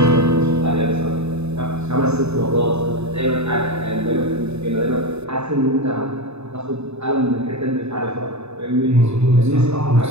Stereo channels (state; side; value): late; left; 0.80 ms